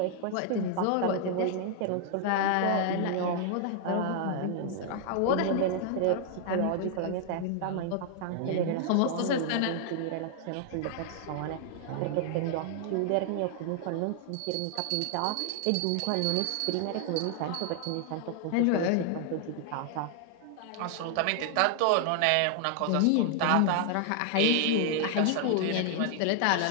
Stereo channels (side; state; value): both; different; correlation 0.00